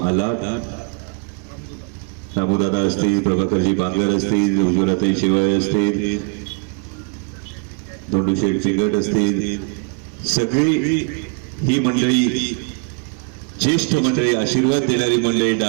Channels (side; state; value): left; quieter; 35.9 dB